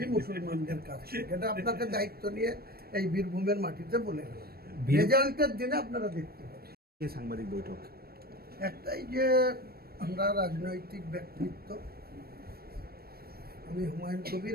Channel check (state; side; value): late; left; 0.44 ms